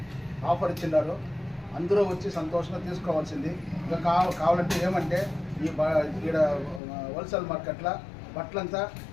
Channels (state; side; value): drops out; right; at 6.8 s